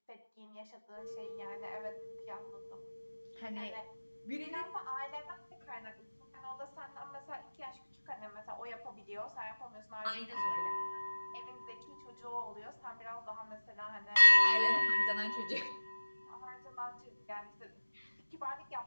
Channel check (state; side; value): inverted; both; correlation -1.00